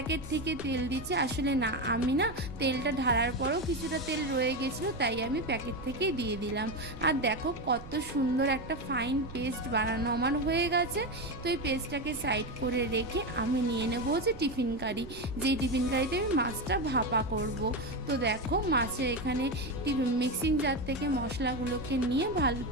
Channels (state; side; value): noise; right; rumble, 15 dB below the sound